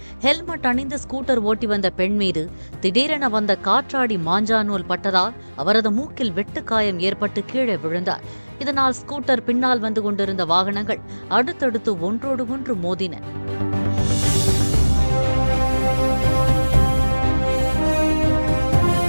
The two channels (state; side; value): inverted; both; correlation -1.00